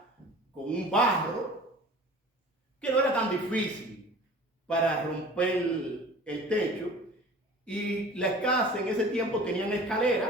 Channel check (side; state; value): both; normal; correlation 0.43